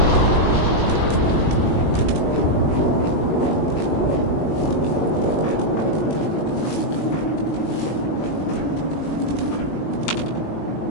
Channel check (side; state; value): right; late; 21 ms